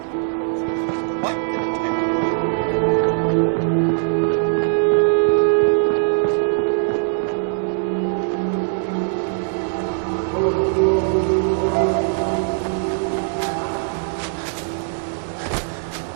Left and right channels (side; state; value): left; silent; digital silence